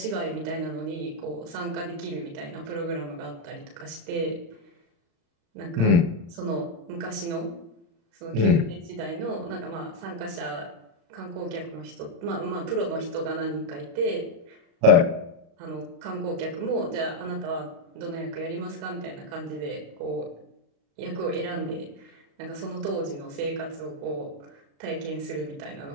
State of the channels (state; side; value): late; left; 35 ms